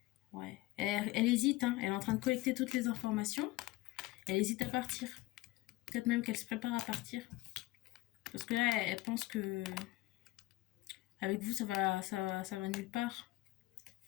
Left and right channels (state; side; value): quieter; right; 18.8 dB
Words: Ouais. Elle hésite. Hein. Elle est en train de collecter toutes les informations. Elle hésite à partir. Peut-être même qu'elle se prépare à partir. Parce que là, elle pense que avec vous, ça va nulle part.